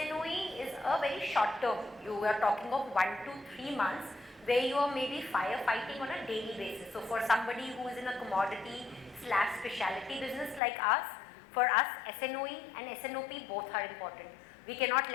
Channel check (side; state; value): right; drops out; at 10.6 s